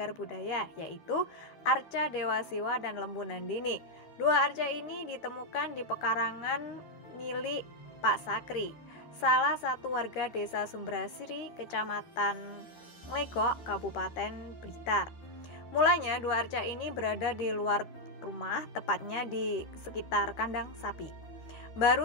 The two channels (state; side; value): late; right; 13 ms